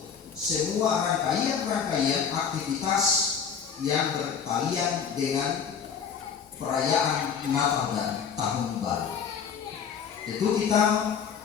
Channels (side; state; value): right; quieter; 7.0 dB